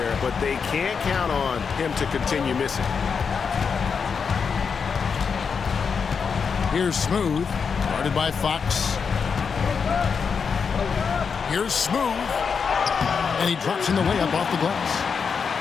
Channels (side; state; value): right; quieter; 6.0 dB